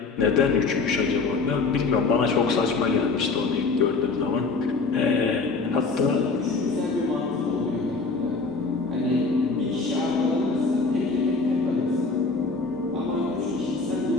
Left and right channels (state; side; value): quieter; right; 4.1 dB